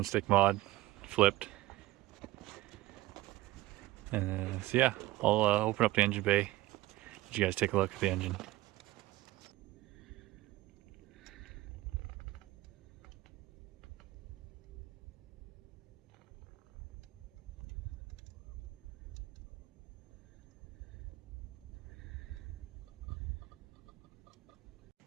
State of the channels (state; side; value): quieter; left; 17.2 dB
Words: stick mod flipped. And so yeah, I'll open up the engine bay, let you guys take a look at the engine.